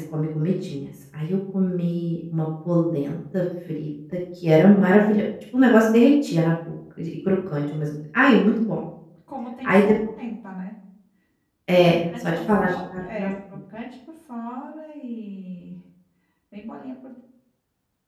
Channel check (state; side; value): identical; both; correlation 1.00